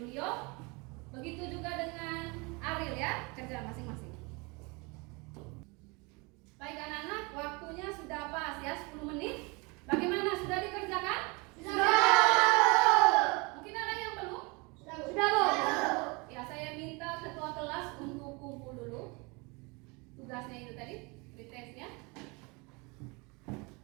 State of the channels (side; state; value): left; quieter; 28.3 dB